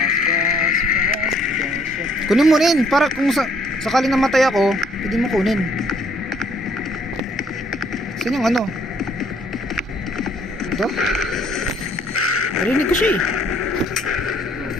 fast, fast, fast. Kunin mo rin para kung sakaling namatay ako, pwede mo kunin. Saan yung ano? Ito? Narinig ko siya eh. Go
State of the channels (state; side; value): normal; both; correlation 0.63